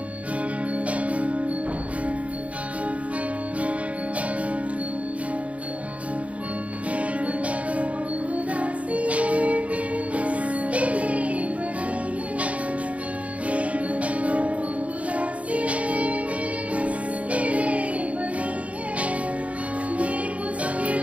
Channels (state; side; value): late; left; 0.066 ms